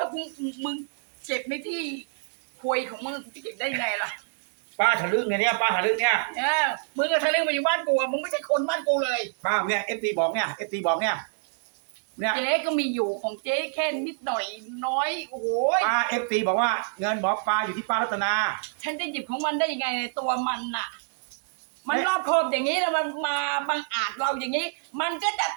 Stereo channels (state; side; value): silent; left; digital silence